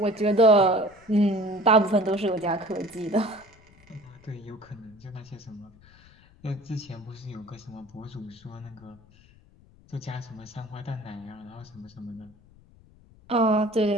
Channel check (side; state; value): left; noise; rumble, 26 dB below the sound